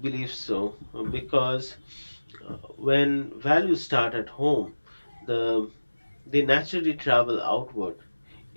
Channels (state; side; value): inverted; both; correlation -1.00